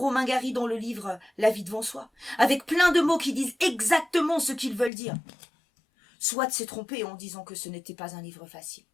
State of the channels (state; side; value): drops out; right; at 4.9 s